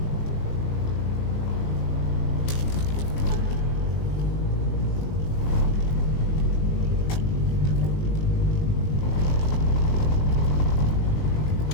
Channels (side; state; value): right; late; 19 ms